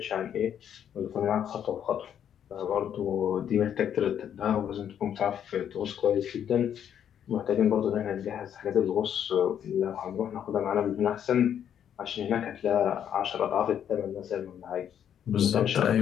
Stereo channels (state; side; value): quieter; right; 9.3 dB